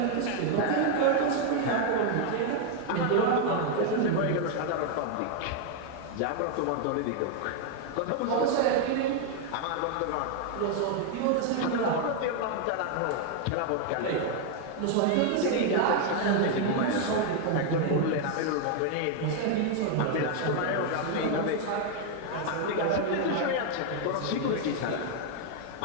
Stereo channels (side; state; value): both; different; correlation 0.00